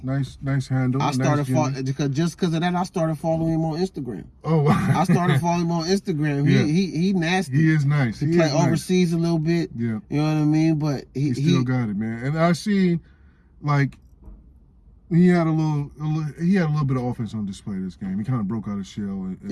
Nice handle. I started just because of that. I started following him on Instagram. Oh, wow. I started following him on Instagram. He nasty. He is nice. He play overseas a little bit. Yeah. You know what I mean? But he still got it, man. And I seen like he had a little bit of offense on display this game. He kind of broke out of shell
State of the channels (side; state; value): both; identical; correlation 1.00